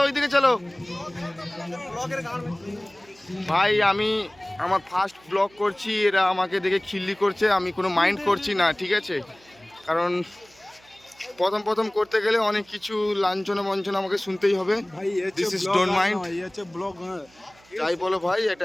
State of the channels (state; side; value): noise; right; hum, 29 dB below the sound